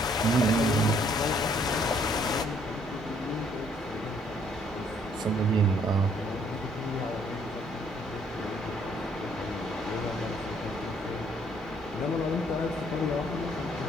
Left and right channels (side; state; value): both; normal; correlation 0.65